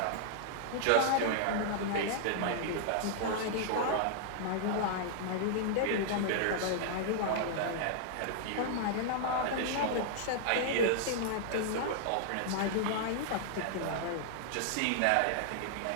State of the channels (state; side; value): different; both; correlation -0.01